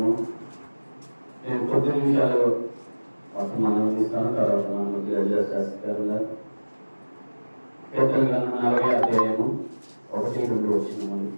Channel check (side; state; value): both; inverted; correlation -1.00